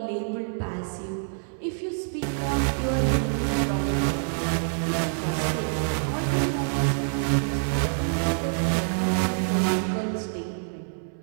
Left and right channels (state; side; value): silent; left; 61 dB below the other